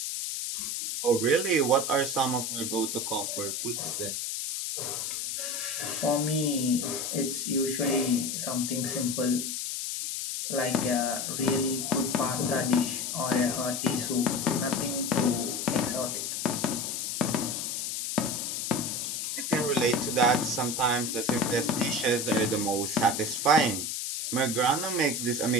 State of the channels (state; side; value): noise; left; hiss, 3 dB below the sound